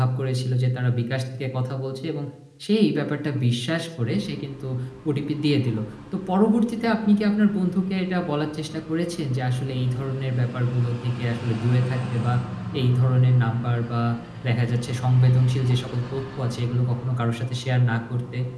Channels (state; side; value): identical; both; correlation 1.00